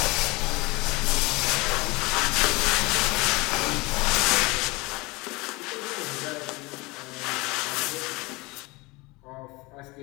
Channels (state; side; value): quieter; right; 24.2 dB